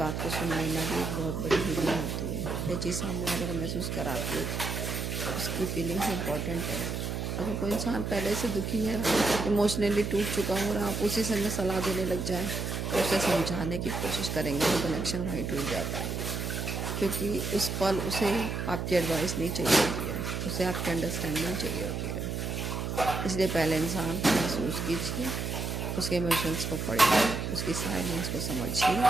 को सुन लेना भी एक बहुत बड़ी हीलिंग होती है। यह चीज़ सामने वाले को महसूस कराती है, उसकी फीलिंग्स इंपॉर्टेंट है। अगर कोई इंसान पहले से दुखी है, इमोशनली टूट चुका हो और आप उसी समय सलाह देने लग जाएं, तो उसे समझाने की कोशिश करेंगे तो कनेक्शन वहीं टूट जाता है, क्योंकि उस पल उसे आपकी एडवाइस नहीं चाहिए होती है, उसे आपकी अंडरस्टैंडिंग चाहिए होती है। इसलिए पहले इंसान को महसूस कीजिए, उसके इमोशंस को पढ़िए, उसकी साइलेंस को समझिए,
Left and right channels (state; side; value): noise; right; hum, 3 dB below the sound